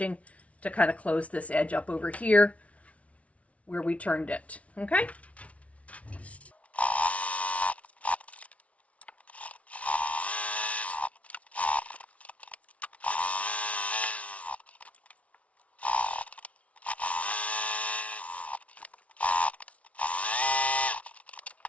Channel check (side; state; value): right; late; 0.065 ms